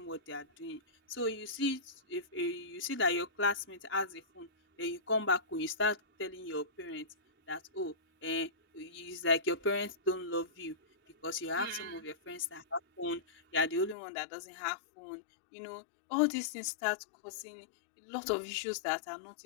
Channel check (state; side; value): drops out; right; at 14.0 s